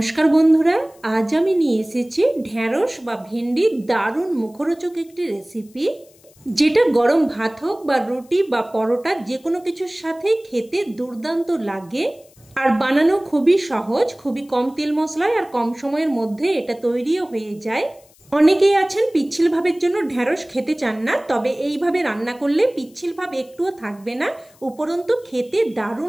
বন্ধুরা, আজ আমি নিয়ে এসেছি ঢ্যাঁড়স বা ভেন্ডির দারুণ মুখরোচক একটি রেসিপি, যেটা গরম ভাত হোক বা রুটি বা পরোটা যে কোনো কিছুর সাথেই খেতে দুর্দান্ত লাগে। আর বানানো খুবই সহজ, খুবই কম তেল মশলায় আর কম সময়ের মধ্যে এটা তৈরিও হয়ে যায়। অনেকেই আছেন পিচ্ছিল ভাবের জন্য ঢ্যাঁড়স খেতে চান না, তবে এইভাবে রান্না করলে পিচ্ছিল ভাব একটুও থাকবে না, উপরন্তু খেতে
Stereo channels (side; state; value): left; noise; hiss, 29 dB below the sound